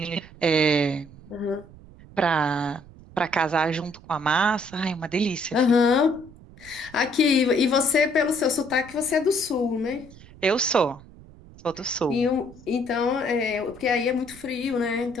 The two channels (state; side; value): noise; right; rumble, 21 dB below the sound